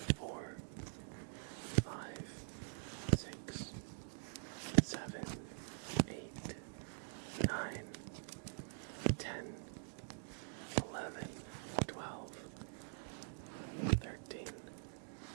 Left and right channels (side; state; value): left; silent; digital silence